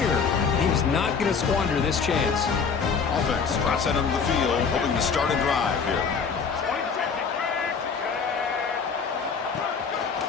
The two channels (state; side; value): quieter; right; 5.8 dB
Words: And he's not going to squander this chance. Offense drops out onto the field, hoping to start a drive here.